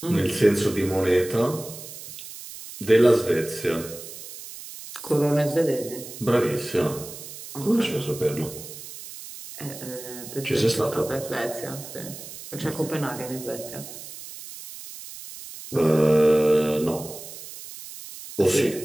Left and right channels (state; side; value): noise; right; hiss, 13 dB below the sound